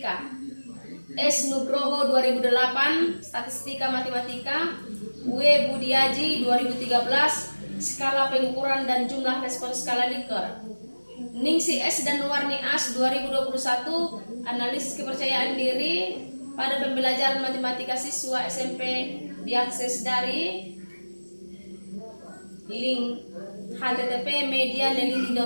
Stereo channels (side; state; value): both; inverted; correlation -1.00